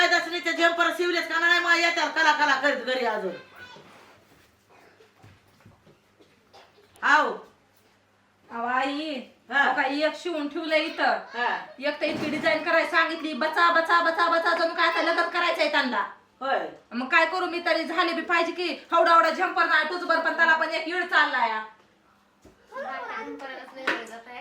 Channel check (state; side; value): identical; both; correlation 1.00